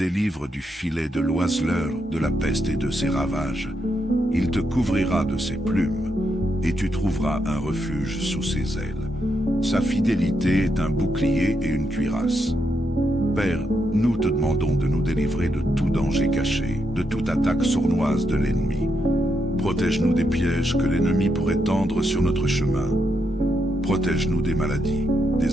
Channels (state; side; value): normal; both; correlation 0.81